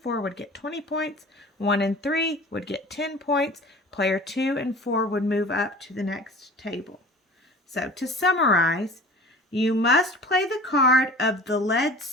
would get 20 points. 1 and 3 would get 10 points. Player 2 and 4 would move up to the next table. So to summarize, you must play the card of the led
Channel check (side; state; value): both; normal; correlation 0.42